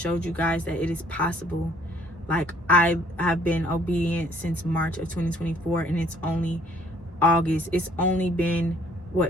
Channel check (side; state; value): both; normal; correlation 0.61